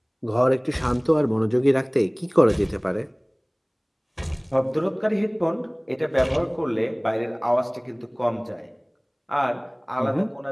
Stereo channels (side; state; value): both; identical; correlation 1.00